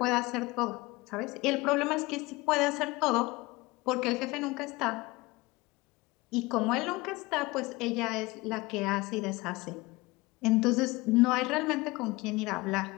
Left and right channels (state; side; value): quieter; right; 22.4 dB